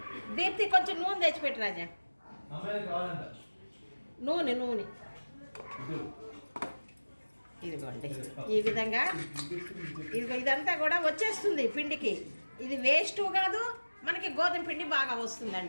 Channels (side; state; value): both; inverted; correlation -1.00